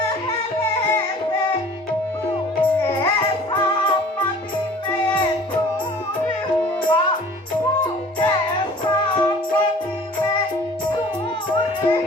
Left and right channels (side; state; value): both; normal; correlation 0.48